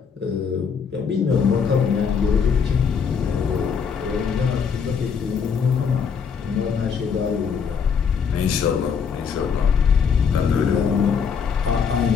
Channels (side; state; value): right; quieter; 6.4 dB